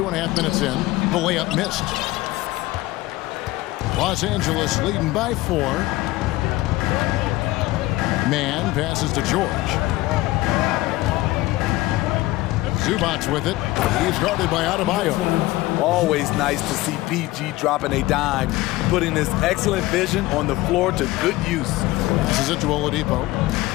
minutes in. The layup missed. Los Angeles leading by 4. Man passes to George. Zubac with it. He's guarded by Adebayo. Always nice to see PG dropping a dime, putting his excellent vision on the floor to good use. This is it to Oladipo.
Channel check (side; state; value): right; quieter; 18.6 dB